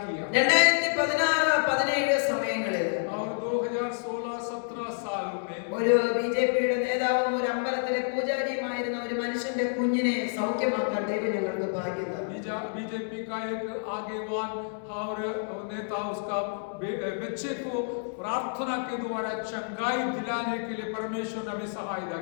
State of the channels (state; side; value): silent; right; 59 dB below the other